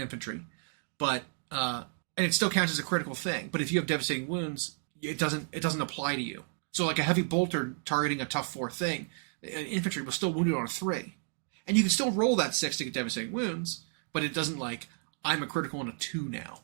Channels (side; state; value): left; silent; 55 dB below the other